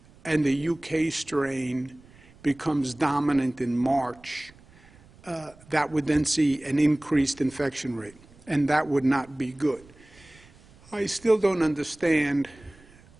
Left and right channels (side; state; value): right; noise; rumble, 26 dB below the sound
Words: and the UK strain becomes dominant in March, that would then see an increased infection rate, and that would not be good. I still don't understand